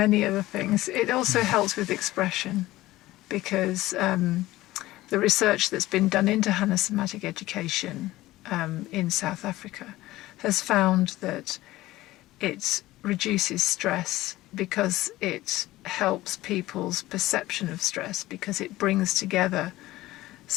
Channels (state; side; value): quieter; right; 17.0 dB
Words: other things. It also helps with expression, because the research that's been done into Hanna Somatic Education in South Africa has found that it reduces stress because it helps people's perception of stress, because it brings together